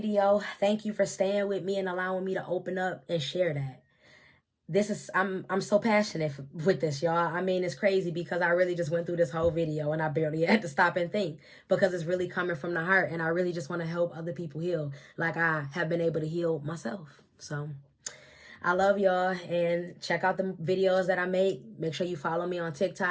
Thank you for staying with me and allowing me to open up and share that. I'm so passionate with this, y'all. I mean, it's crazy because I really just went through this whole video and I barely had to stop and think, because it's really coming from the heart, and I really just want to help other people heal like I have been able to heal myself. So I love y'all, and check out the videos that I make. Make sure you follow me on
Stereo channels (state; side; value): identical; both; correlation 1.00